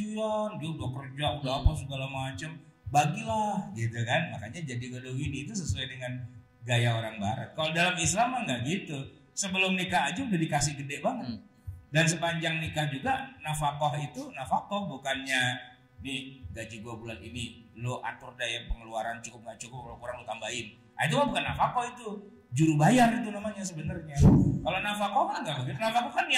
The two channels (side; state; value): both; identical; correlation 1.00